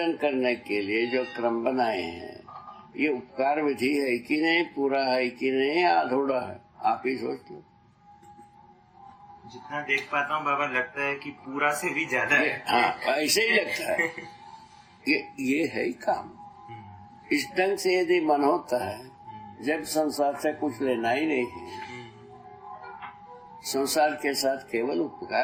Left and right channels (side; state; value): both; identical; correlation 1.00